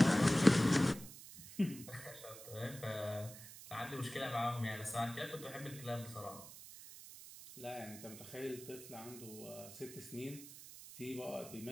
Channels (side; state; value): right; noise; hiss, 14 dB below the sound